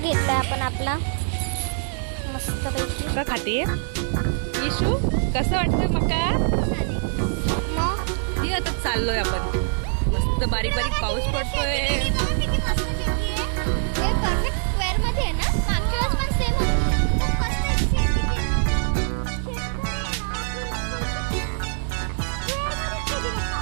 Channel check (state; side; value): silent; left; digital silence